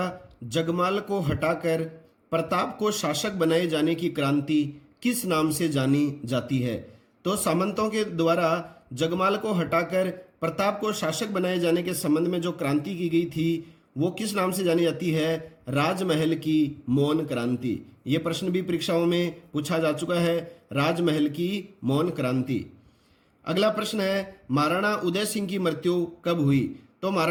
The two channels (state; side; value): identical; both; correlation 1.00